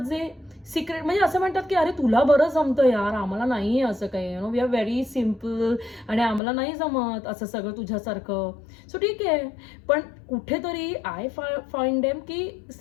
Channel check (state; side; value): drops out; right; at 6.4 s